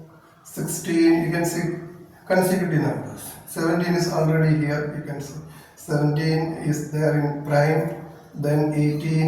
16, you can see consecutive numbers. 17 is already here, you can see. 17 is there in prime. Then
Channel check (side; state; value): both; identical; correlation 1.00